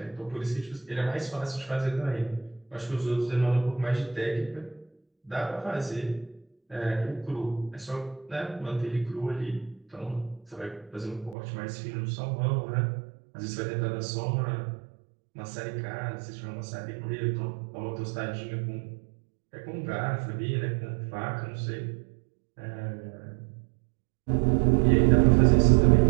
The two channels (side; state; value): left; drops out; at 11.4 s